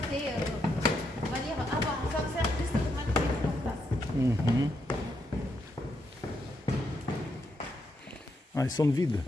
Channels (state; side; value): normal; both; correlation 0.80